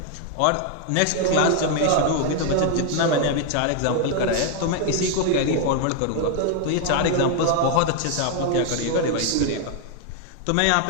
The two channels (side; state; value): both; different; correlation 0.00